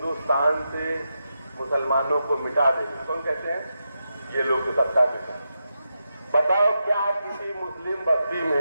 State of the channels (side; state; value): both; inverted; correlation -0.87